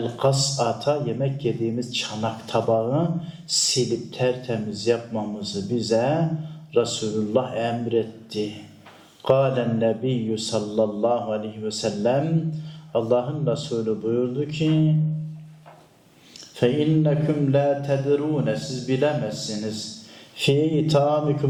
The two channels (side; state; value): both; identical; correlation 1.00